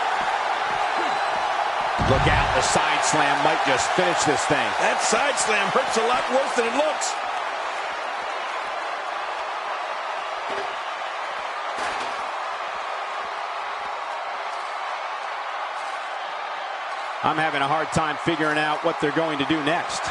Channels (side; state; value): both; identical; correlation 1.00